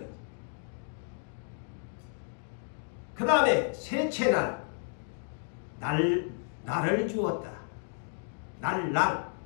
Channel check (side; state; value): right; silent; digital silence